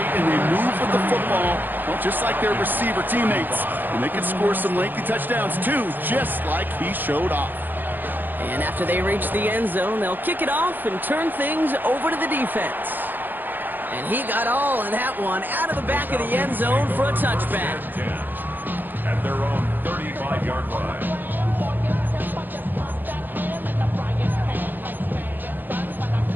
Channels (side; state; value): left; late; 0.090 ms